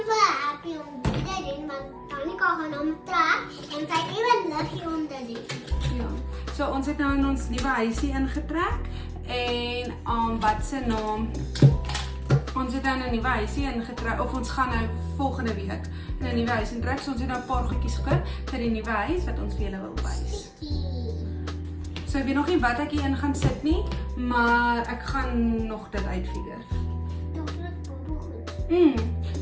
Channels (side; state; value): both; identical; correlation 1.00